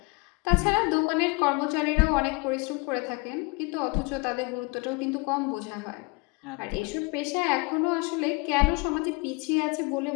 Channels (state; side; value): quieter; right; 28.5 dB